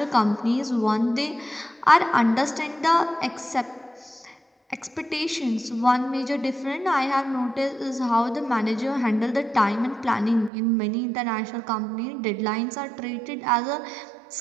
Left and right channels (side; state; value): left; drops out; at 10.5 s